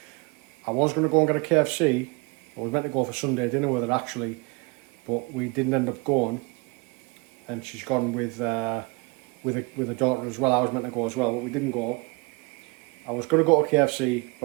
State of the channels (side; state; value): left; quieter; 28.4 dB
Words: I was going to go and get a KFC. I was meant to go for Sunday dinner with her actually, but we didn't end up going, and she's gone with a daughter as well. I was meant to go as well, but we didn't go. I was going to go to KFC,